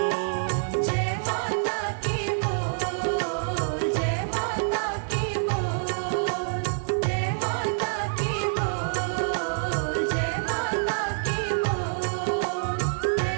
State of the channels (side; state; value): left; silent; 60 dB below the other